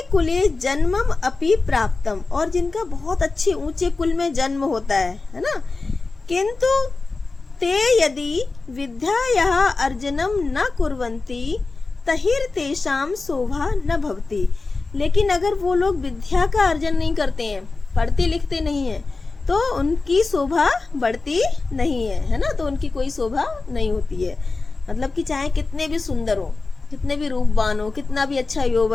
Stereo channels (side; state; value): right; quieter; 3.8 dB